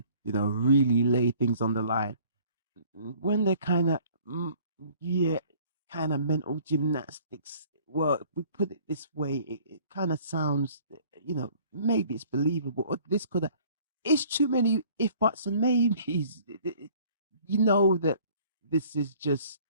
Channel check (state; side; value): inverted; both; correlation -0.54